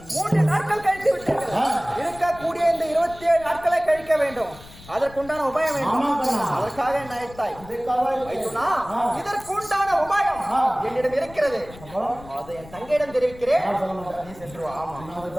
3 நாட்கள் கழித்து விட்டீர்கள். இருக்கக்கூடிய இந்த 27 நாட்களை கழிக்க வேண்டும். அதற்குண்டான உபாயம் வேண்டும். அதற்காக என்ன அழைத்தாய்? மைசூரா இதற்குண்டான உபாயம் என்னிடம் இருக்கிறது. அதை என் தங்கையிடம் தெரிவிக்கிறேன். நீ சென்று வா.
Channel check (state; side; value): noise; left; rumble, 19 dB below the sound